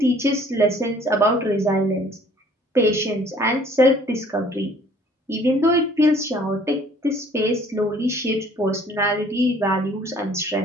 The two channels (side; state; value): both; normal; correlation 0.56